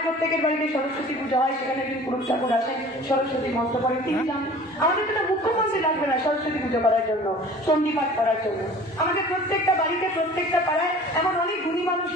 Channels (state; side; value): normal; both; correlation 0.45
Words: প্রত্যেকের বাড়িতে সরস্বতী পুজো হয়, সেখানে একজন পুরুষ ঠাকুর আসেন, সরস্বতী মন্ত্র করেন, তিনি জানেন। আমাদের তো মুখ্যমন্ত্রী লাগবে না সরস্বতী পুজো করার জন্য, চণ্ডীপাঠ করার জন্য। আমাদের প্রত্যেকটা বাড়িতে, প্রত্যেকটা পাড়ায় এমন অনেক গুণী মানুষ